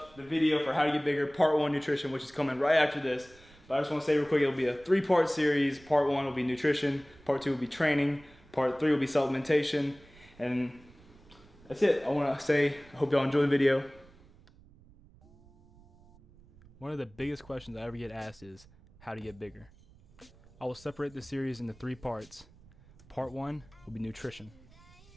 the video for how to get bigger, part 1 nutrition, which is coming right after this. But I just want to say real quick, it'll be a 3-part series. Part 1 will be nutrition, part 2 will be training, part 3 will be supplementation, and that's it. I want to say, I hope y'all enjoy the video. One of the biggest questions I ever get asked is how to get bigger. I will separate the series into 3 parts. Part 1 will be nutrition.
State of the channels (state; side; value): noise; right; rumble, 25 dB below the sound